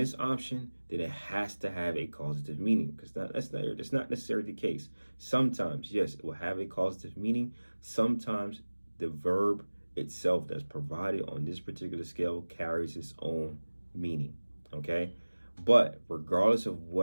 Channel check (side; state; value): both; inverted; correlation -1.00